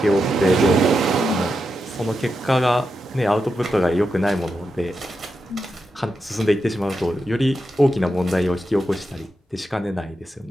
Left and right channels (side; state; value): both; normal; correlation 0.87